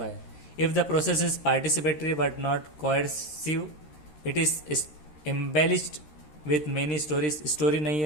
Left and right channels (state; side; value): late; right; 13 ms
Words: है। If the process is participatory but not coercive, it is embellished with many stories, story नहीं